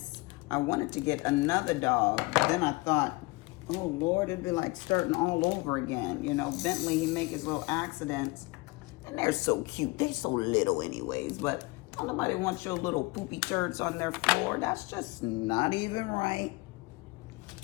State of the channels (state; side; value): quieter; right; 23.9 dB